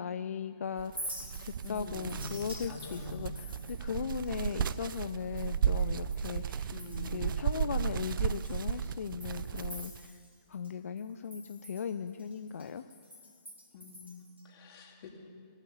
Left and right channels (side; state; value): both; inverted; correlation -0.61